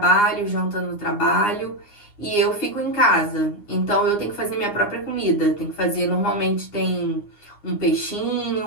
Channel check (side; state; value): right; late; 9.7 ms